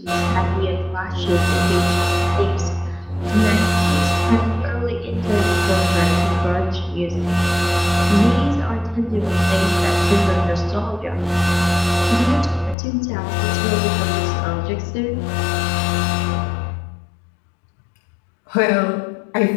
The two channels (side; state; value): right; drops out; at 12.8 s